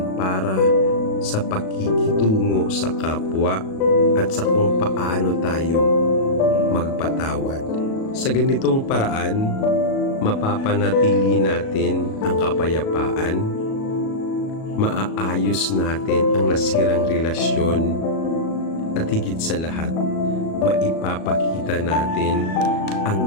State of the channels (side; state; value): right; late; 37 ms